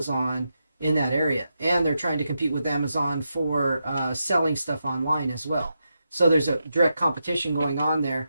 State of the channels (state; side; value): inverted; both; correlation -0.86